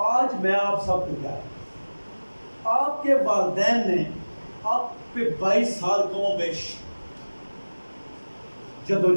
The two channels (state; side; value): inverted; both; correlation -1.00